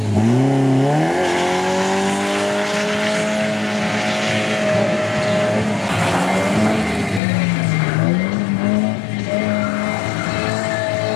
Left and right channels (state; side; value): drops out; right; at 7.2 s